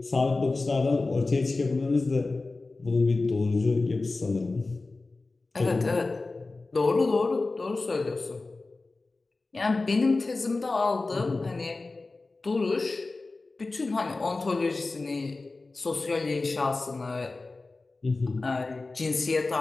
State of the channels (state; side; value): quieter; right; 3.5 dB